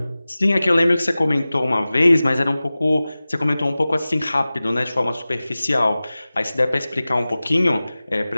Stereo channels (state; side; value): inverted; both; correlation -0.97